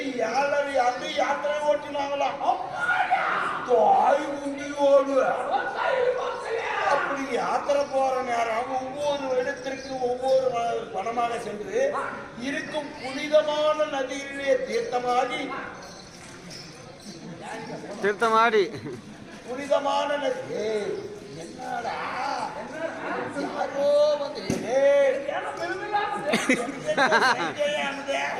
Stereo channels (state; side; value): identical; both; correlation 1.00